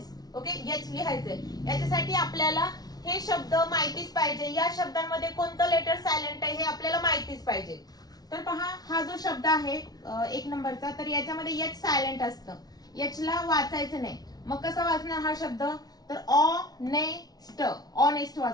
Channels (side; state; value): right; late; 0.19 ms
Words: ओके, याच लिहायचंय. याच्यासाठी आपल्याला हे शब्द माहितीच पाहिजे, या शब्दांमध्ये कोणतं लेटर सायलेंट आहे हे आपल्याला माहितीच पाहिजे. तर पहा, हा जो शब्द आहे एक नंबरचा, तर याच्यामध्ये एच सायलेंट असतं. एच ला वाचायचं नाही. मग कसं वाचणार हा शब्द, तर ऑनेस्ट, ऑनेस्ट